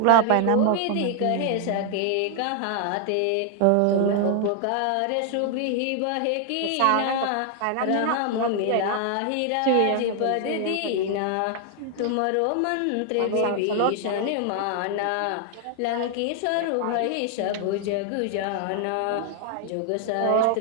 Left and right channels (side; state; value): both; different; correlation 0.00